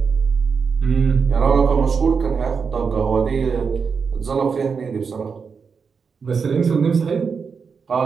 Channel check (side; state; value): left; quieter; 5.7 dB